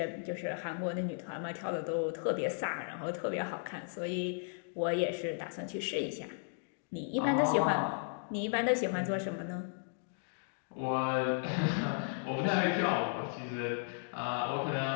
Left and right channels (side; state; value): right; silent; digital silence